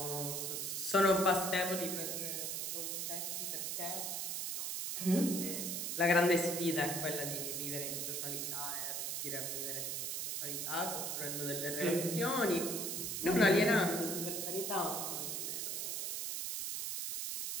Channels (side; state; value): right; noise; hiss, 2 dB below the sound